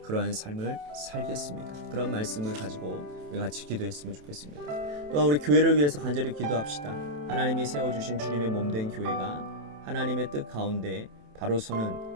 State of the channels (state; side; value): late; left; 27 ms